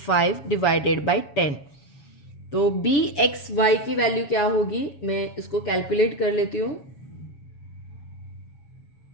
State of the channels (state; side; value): late; right; 7.2 ms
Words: डिवाइडेड बाई 10। तो बी एक्स वाई की वैल्यू क्या होगी, मैं इसको कैलकुलेट कर लेती हूँ।